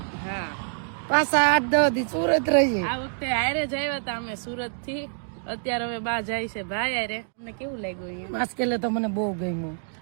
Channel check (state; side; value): silent; left; digital silence